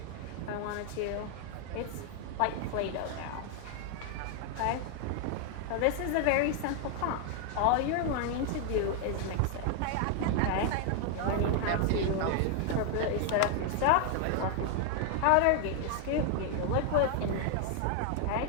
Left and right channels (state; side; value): different; both; correlation 0.00